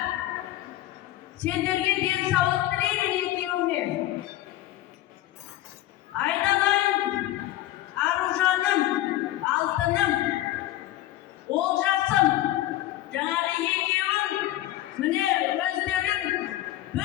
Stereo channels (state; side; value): quieter; right; 14.8 dB